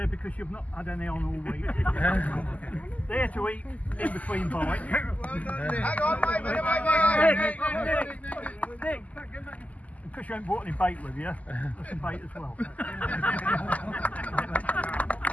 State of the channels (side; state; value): right; late; 0.074 ms